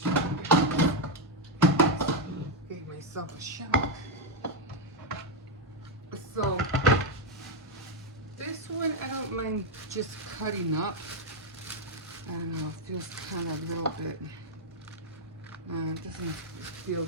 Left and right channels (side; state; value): both; normal; correlation 0.03